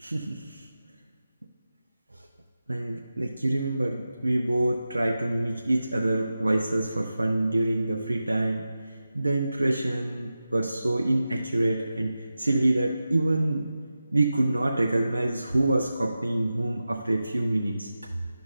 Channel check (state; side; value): inverted; both; correlation -0.92